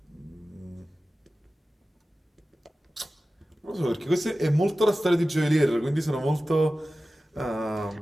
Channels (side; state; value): both; normal; correlation 0.95